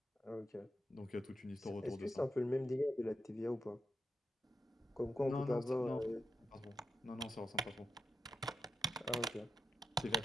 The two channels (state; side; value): normal; both; correlation 0.85